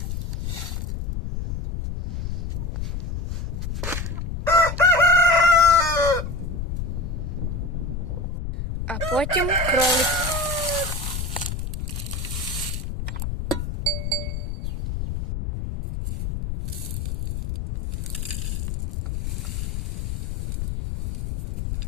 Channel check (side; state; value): left; noise; rumble, 3 dB below the sound